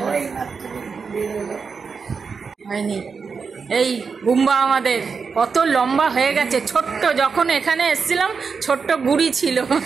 ওই মাত্র ঘুরে এলো। হয়নি। এই গুম্বা আমাদের কত লম্বা হয়ে গেছে, ছোট্ট যখন এখানে এসেছিলাম ছোট্ট গুড়ি ছিল,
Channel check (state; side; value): quieter; left; 5.4 dB